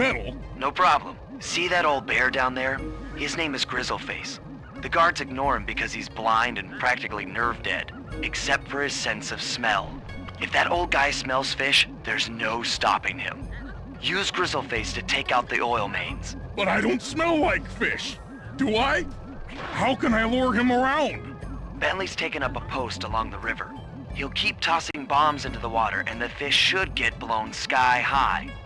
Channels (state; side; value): identical; both; correlation 1.00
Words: No problem. See that old bear down there? His name is Grizzleface. The guards ignore him because he's blind and practically nerve dead, except for his sense of smell. If that old guy smells fish, there's no stopping him. Use Grizzleface to take out the oil mains. But I don't smell like fish. Do I? How can I lure him around? Bentley's taken up a post along the river. He'll keep tossing bombs into the water, and the fish should get blown sky high.